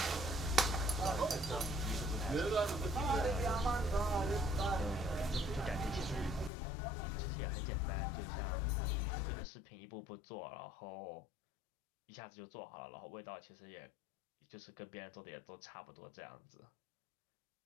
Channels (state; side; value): drops out; right; at 6.5 s